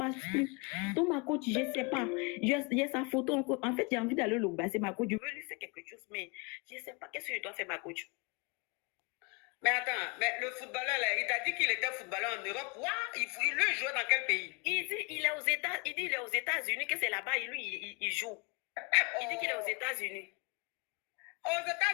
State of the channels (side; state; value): right; quieter; 31.8 dB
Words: plus. Donc, ma coach, je ne sais pas. Il y a sa photo encore. En fait, j'ai envie d'aller le basser, ma coach. Je veux lui faire quelque chose, mais je ne sais pas qu'est-ce que je dois faire, ma coach. Mais attends, mais le footballeur là, il t'a dit qu'il était footballeur en Europe. Il le joue dans quel pays? Il dit il est aux États-Unis, que c'est là-bas, lui, il joue. Il dit qu'il est aux États-Unis. Aux